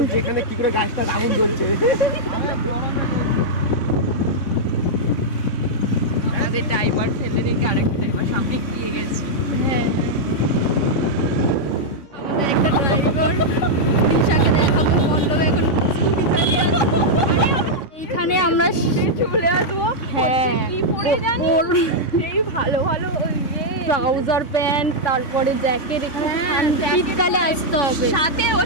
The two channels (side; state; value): right; late; 3.6 ms